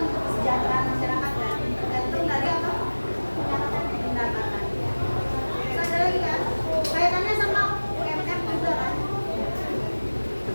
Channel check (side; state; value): both; inverted; correlation -1.00